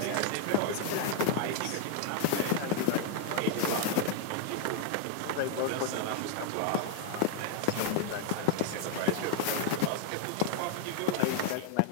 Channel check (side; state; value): both; different; correlation 0.00